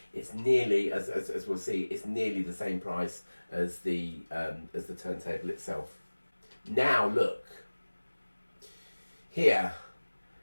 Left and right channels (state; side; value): inverted; both; correlation -1.00